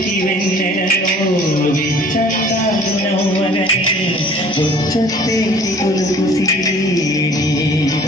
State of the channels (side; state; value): both; normal; correlation 0.51